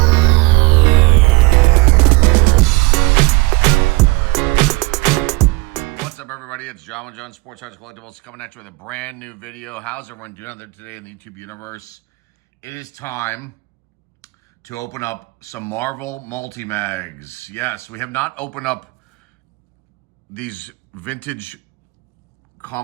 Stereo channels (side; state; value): left; quieter; 24.1 dB